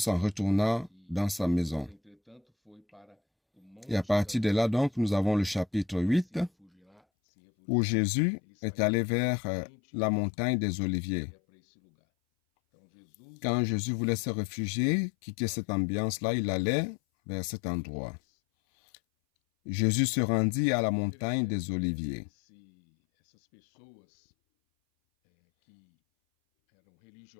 retourna dans sa maison. Et à partir de là, donc, nous avons le chapitre 8, où Jésus est allé vers la montagne des Oliviers. Quand Jésus voulait se réfugier, quitter cette ambiance-là, il allait vers cet endroit. Jésus se rendit à la montagne des Oliviers.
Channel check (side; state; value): right; drops out; at 7.0 s